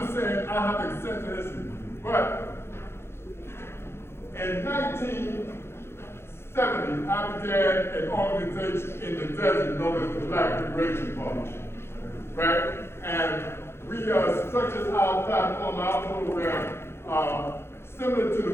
saying I have extensive history. But in 1970, I began an organization in the desert known as the Black Liberation Party. Right? And we structured our platform, our program, similar to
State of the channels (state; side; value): late; right; 0.12 ms